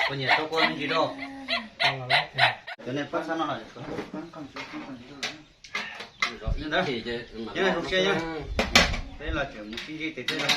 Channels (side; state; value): both; identical; correlation 1.00